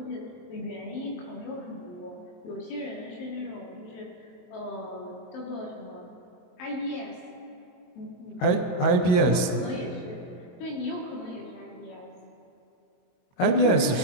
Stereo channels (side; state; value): right; late; 22 ms